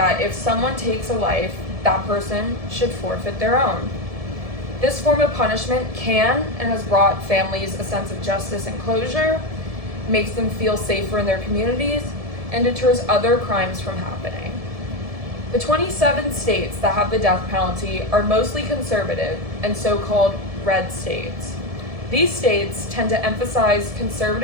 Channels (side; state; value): left; late; 1.7 ms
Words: if someone takes a life, that person should forfeit their own. This form of punishment can and has brought families a sense of justice and closure, makes them feel safer in their communities, and deters other crimes from happening. The 27 states that have the death penalty are mostly conservative and so-called red states. These states tend to emphasize